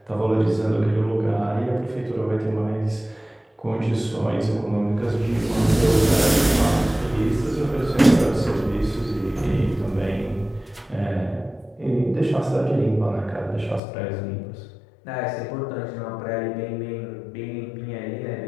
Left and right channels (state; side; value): drops out; right; at 13.8 s